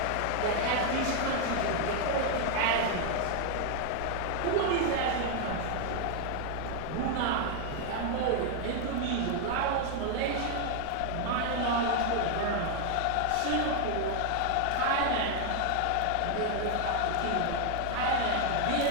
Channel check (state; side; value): different; both; correlation 0.00